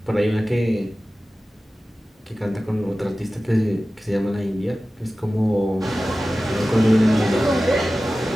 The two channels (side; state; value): both; normal; correlation 0.95